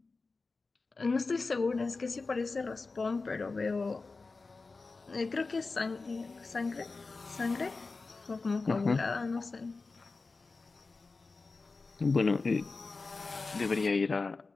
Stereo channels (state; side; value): quieter; right; 3.9 dB